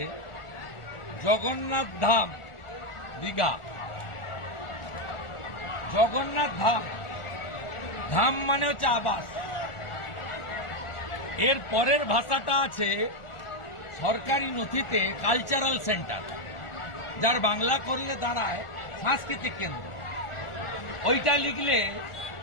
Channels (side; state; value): right; late; 1.4 ms